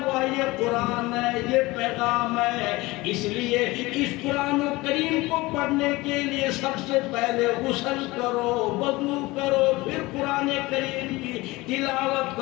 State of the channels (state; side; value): quieter; right; 21.1 dB